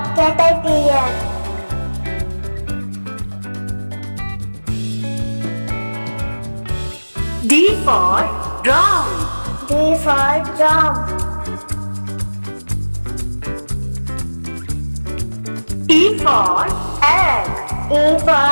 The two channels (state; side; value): inverted; both; correlation -1.00